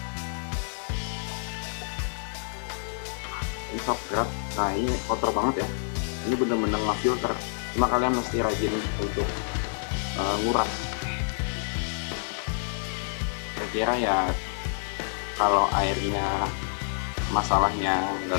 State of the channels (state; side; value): silent; right; 59 dB below the other